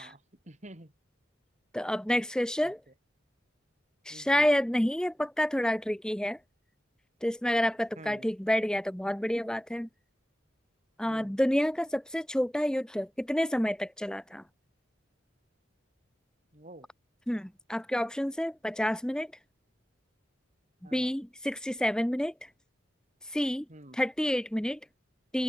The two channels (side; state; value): both; normal; correlation 0.96